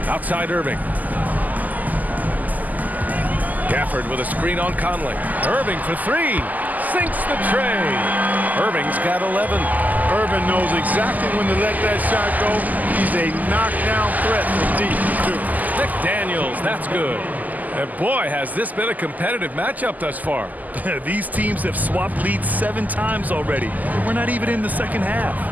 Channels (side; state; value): left; late; 0.081 ms